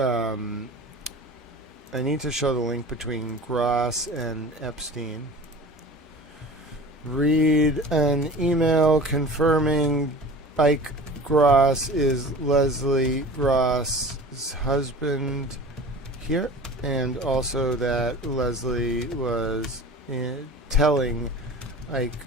I need to show the link between Gross and Epstein. Read an email confirming Ike Gross is Leslie Gross's husband here, and also that Leslie was telling Ike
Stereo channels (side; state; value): both; normal; correlation 0.38